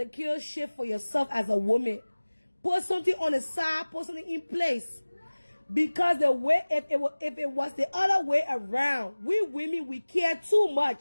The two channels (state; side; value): inverted; both; correlation -1.00